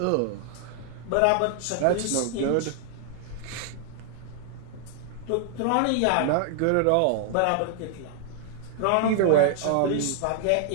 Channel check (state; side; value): different; both; correlation 0.00